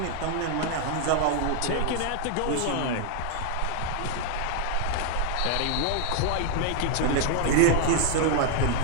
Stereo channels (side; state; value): both; different; correlation 0.00